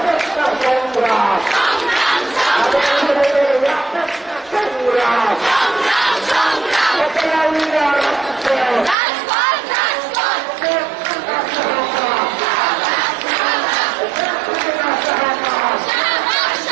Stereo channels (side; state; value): left; drops out; at 9.0 s